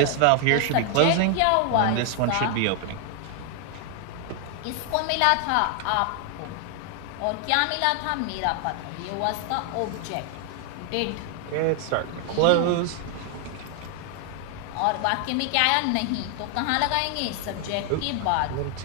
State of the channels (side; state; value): both; different; correlation 0.00